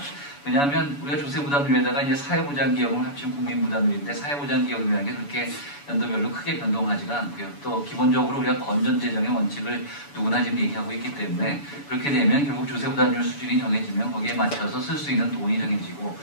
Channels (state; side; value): late; right; 7.0 ms